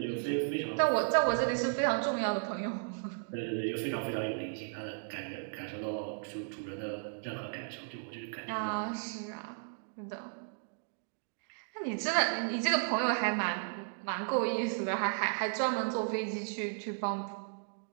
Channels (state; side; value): silent; left; digital silence